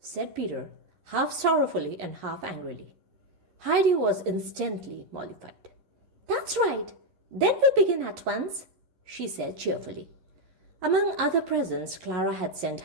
Peter, half sorrowfully and half angrily. Heidi was instantly mollified. "That's right. Then we'll begin at once," she said cheerfully. Among other presents, Clara had sent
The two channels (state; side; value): late; left; 11 ms